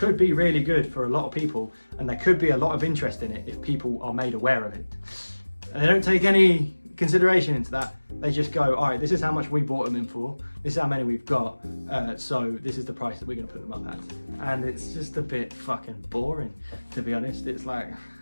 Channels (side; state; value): both; inverted; correlation -1.00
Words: be really good for a lot of people, and there could be a lot of interest in it if people are made aware of it. And they don't take any consideration into that. They just go, all right, this is how much we bought them in for, this is how many we've got, so this is the price that we're going to put them up at. And it's just a bit fucking boring, to be honest. It's like,